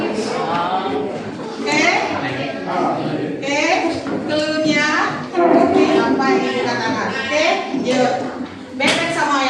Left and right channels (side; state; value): both; identical; correlation 1.00